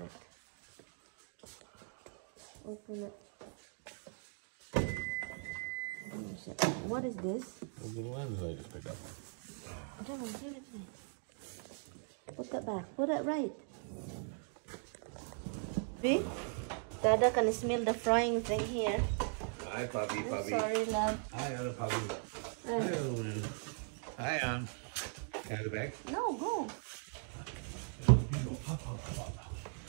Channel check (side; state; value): left; silent; 52 dB below the other